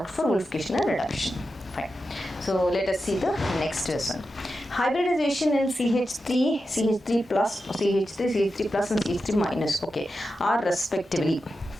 for Wolff-Kishner reduction. Fine. So let us see the next lesson. Hybridization in CH3 plus, CH3 plus and CH3 minus, okay, are respectively.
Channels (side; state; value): both; normal; correlation 0.90